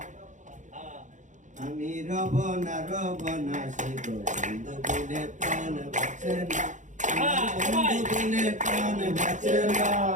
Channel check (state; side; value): late; left; 0.36 ms